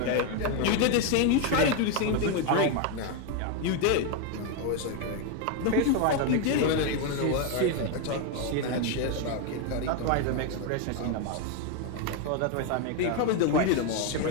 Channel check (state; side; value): different; both; correlation 0.02